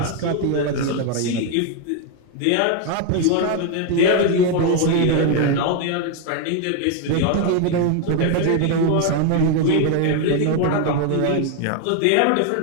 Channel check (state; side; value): different; both; correlation 0.01